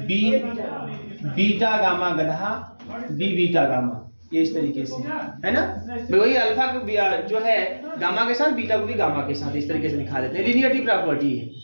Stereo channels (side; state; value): both; inverted; correlation -1.00